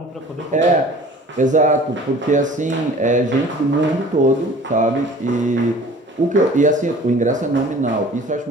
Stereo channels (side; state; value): both; normal; correlation 0.46